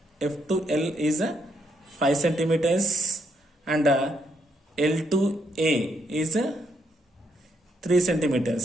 F to L is 5 centimeters and L to A is 3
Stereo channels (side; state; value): both; normal; correlation 0.75